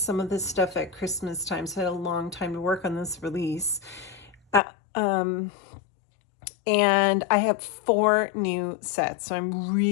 of this stuff at Christmas time. So I had a long time to work on this release. And I have 4 new sets. So I'm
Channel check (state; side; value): drops out; right; at 4.6 s